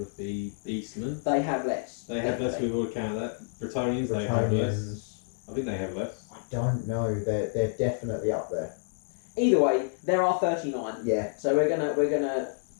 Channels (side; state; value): right; silent; digital silence